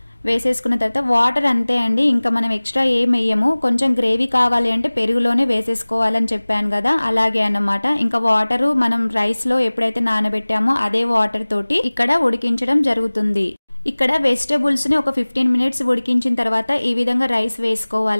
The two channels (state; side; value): inverted; both; correlation -1.00